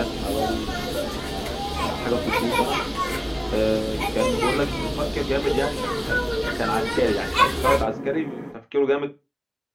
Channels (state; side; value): identical; both; correlation 1.00